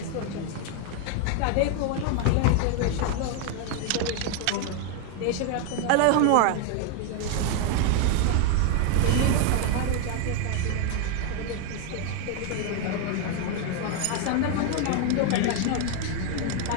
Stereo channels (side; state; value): both; different; correlation 0.01